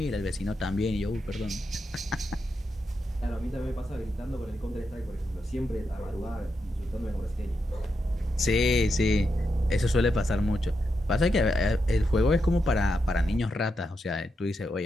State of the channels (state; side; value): normal; both; correlation 0.85